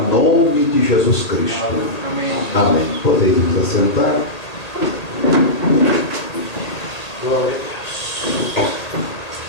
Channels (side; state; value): right; late; 1.8 ms